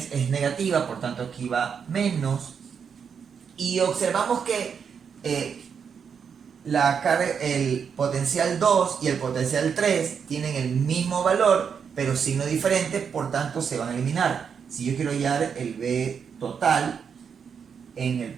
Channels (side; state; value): left; quieter; 6.8 dB